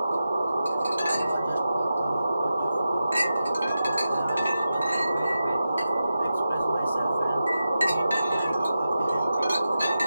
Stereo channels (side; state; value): both; inverted; correlation -0.90